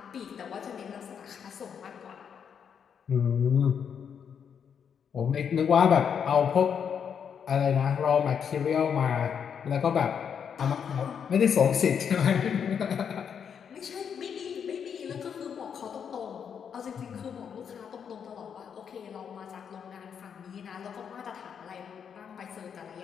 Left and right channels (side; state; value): right; quieter; 7.5 dB